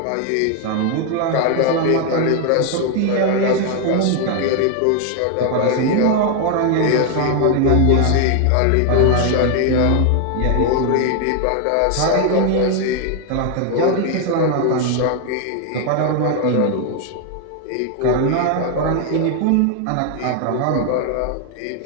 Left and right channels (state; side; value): different; both; correlation 0.00